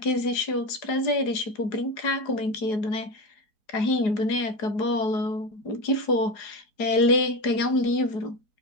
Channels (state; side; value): late; right; 4.7 ms